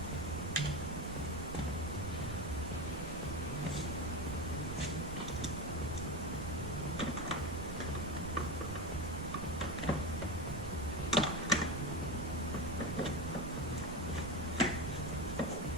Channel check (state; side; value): noise; right; rumble, 9 dB below the sound